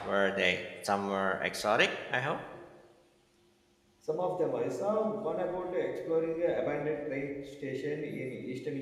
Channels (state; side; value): identical; both; correlation 1.00